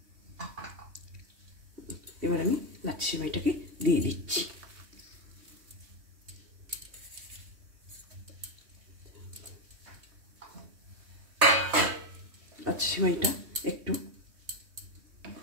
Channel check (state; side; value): late; left; 3.2 ms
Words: এবার আমি লাচ্ছা সিমাইটাকে দিয়ে দিচ্ছি। লাচ্ছা সিমাইটা একটু